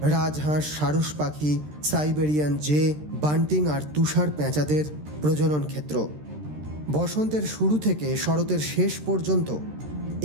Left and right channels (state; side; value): late; left; 13 ms